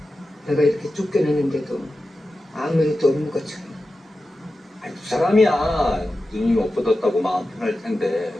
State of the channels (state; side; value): normal; both; correlation 0.92